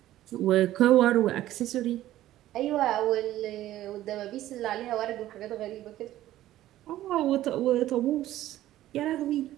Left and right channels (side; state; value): left; quieter; 14.1 dB